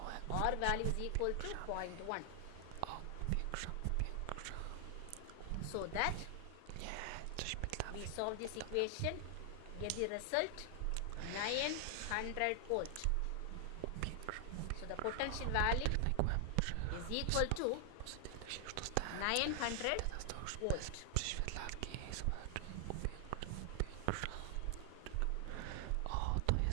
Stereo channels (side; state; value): both; different; correlation 0.00